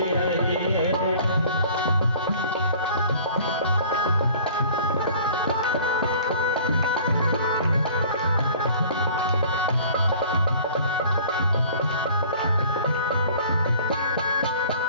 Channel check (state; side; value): inverted; both; correlation -0.49